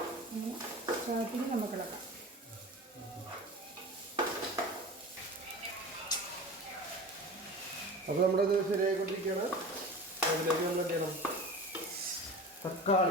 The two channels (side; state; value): both; normal; correlation 0.35